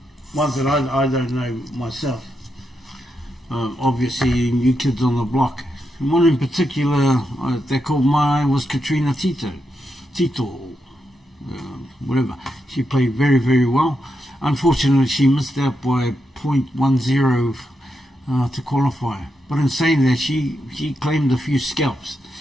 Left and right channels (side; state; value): both; normal; correlation 0.84